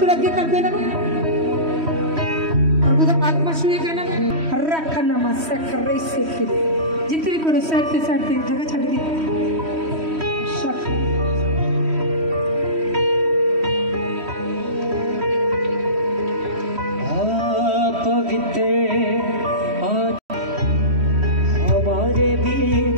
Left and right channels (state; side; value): late; left; 3.1 ms